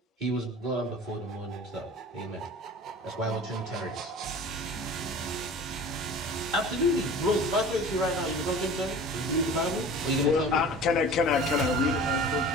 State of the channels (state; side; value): normal; both; correlation 0.40